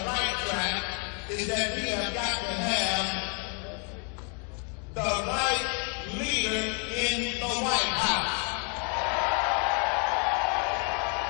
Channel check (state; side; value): quieter; right; 36.5 dB